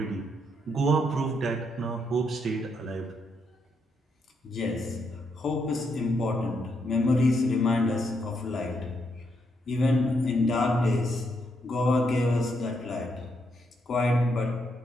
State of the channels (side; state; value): both; normal; correlation 0.78